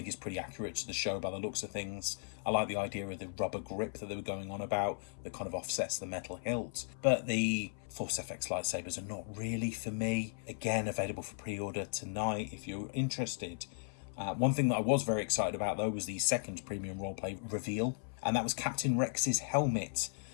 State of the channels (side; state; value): right; silent; 53 dB below the other